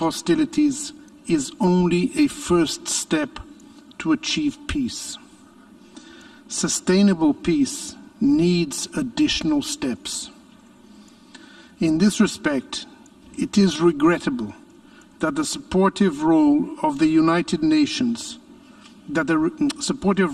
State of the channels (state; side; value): identical; both; correlation 1.00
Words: is only a first step to achieve peace. Sustainable peace needs additional steps. In this respect, it is regrettable that the supportive role of the United Nations, that